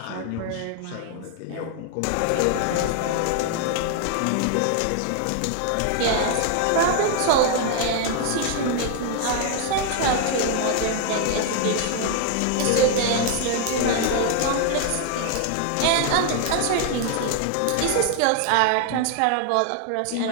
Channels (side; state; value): both; different; correlation 0.00